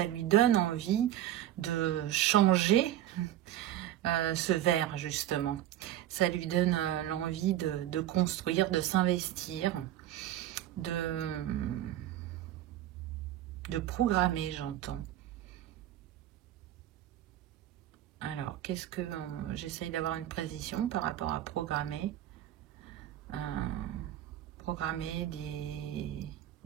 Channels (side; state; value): left; quieter; 12.7 dB